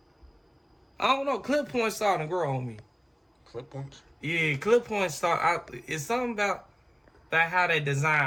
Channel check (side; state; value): both; identical; correlation 1.00